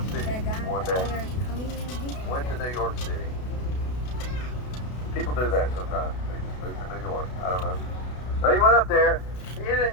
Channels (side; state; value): right; late; 32 ms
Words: City one day. Went to New York City. People do that sometimes. They just move to New York. I don't know. So he went up there,